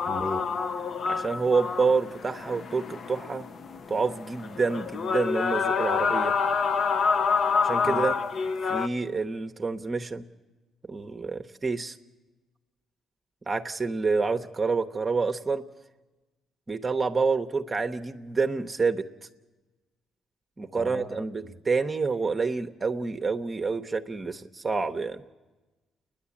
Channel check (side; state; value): both; normal; correlation 0.82